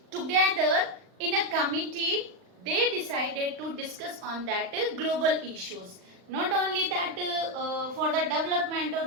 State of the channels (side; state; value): left; late; 39 ms